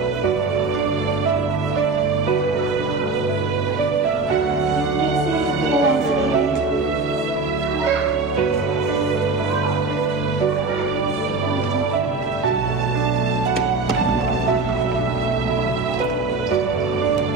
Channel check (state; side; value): quieter; left; 3.9 dB